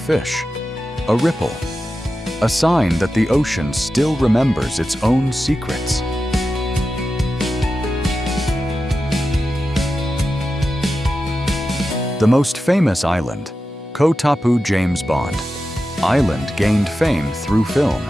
a ripple, a sign that the ocean still remembers its own secrets. The most famous island, Koh Tapu James Bond Island, gained fame through film,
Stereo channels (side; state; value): both; normal; correlation 0.91